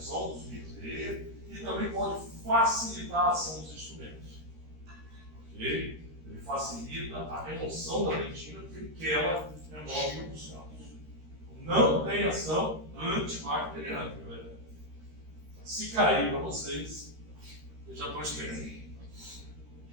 dos micro e também pode facilitar a ação dos instrumentos. Ok? Ele facilita a remoção da dentina porque ela remove os cálcios. Não tem ação antibacteriana, galera. Se cair para vocês, já estão esperando.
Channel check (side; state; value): left; late; 13 ms